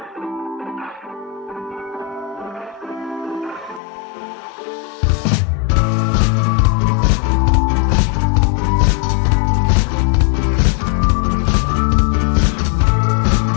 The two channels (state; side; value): drops out; right; at 3.8 s